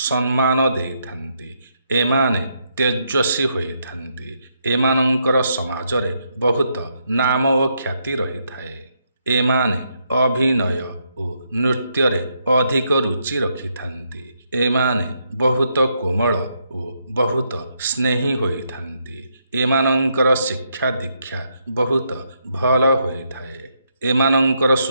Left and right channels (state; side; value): inverted; both; correlation -0.77